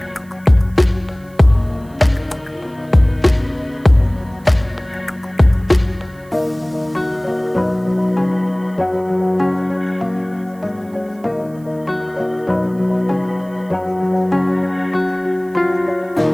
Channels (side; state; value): right; noise; hiss, 29 dB below the sound